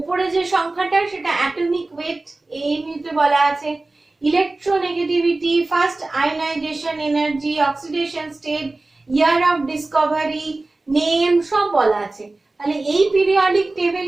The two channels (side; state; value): left; quieter; 3.1 dB